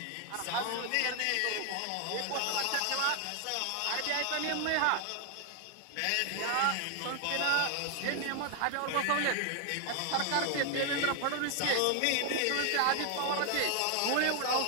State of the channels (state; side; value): different; both; correlation 0.00